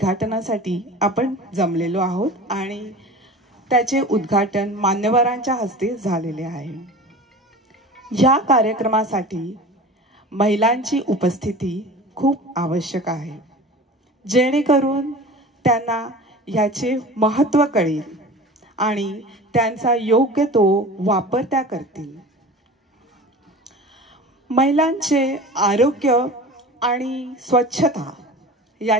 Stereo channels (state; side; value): normal; both; correlation 0.37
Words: आपण जमलेलो आहोत आणि त्याचे उद्घाटन मान्यवरांच्या हस्ते झालेले आहे. या कार्यक्रमासाठी महिलांची उपस्थिती खूप आवश्यक आहे, जेणेकरून त्यांना याचे महत्त्व कळेल आणि त्यांचा योग्य तो वापर त्या करतील. महिलांचे आरोग्य आणि स्वच्छता